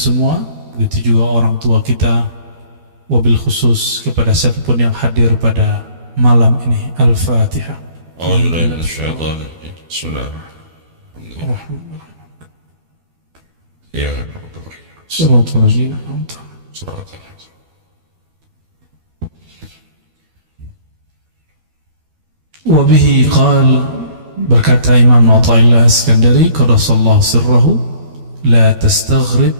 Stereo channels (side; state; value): left; late; 12 ms